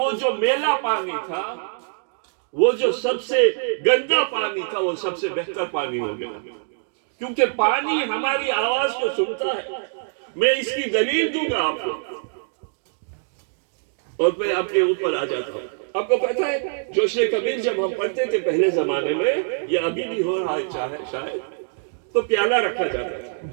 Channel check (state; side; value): silent; left; digital silence